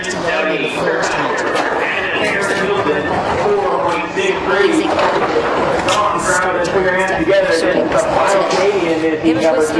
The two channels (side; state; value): both; identical; correlation 1.00